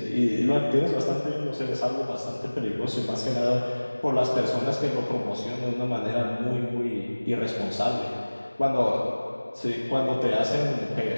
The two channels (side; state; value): both; inverted; correlation -1.00